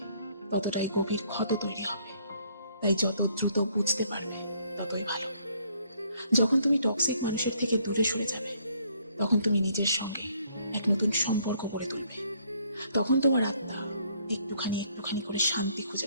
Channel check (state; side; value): inverted; both; correlation -0.66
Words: ততটাই গভীর ক্ষত তৈরি হবে। তাই যত দ্রুত বুঝতে পারবে, ততই ভালো। যখন তুমি টক্সিক মানুষের থেকে দূরে সরে যাবে, তখন তুমি নিজের সঙ্গে এক নতুন সম্পর্ক গড়ে তুলবে। তখন তোমার আত্মা একটুখানি একটুখানি করে শান্তি খুঁজে